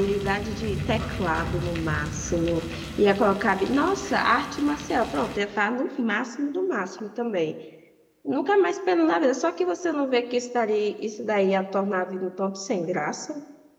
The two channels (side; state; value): both; identical; correlation 1.00